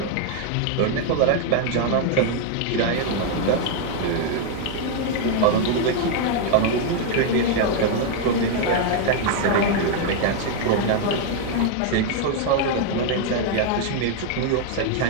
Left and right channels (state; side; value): different; both; correlation 0.00